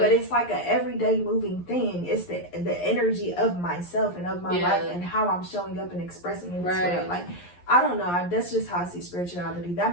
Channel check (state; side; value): late; right; 11 ms